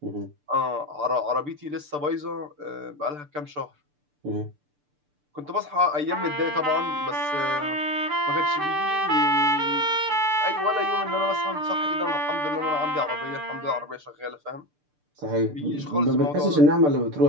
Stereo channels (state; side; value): late; left; 6.8 ms